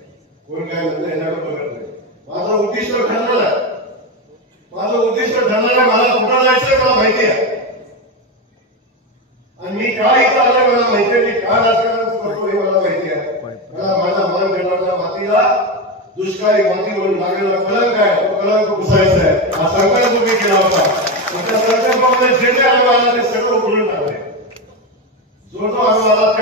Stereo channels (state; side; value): normal; both; correlation 0.14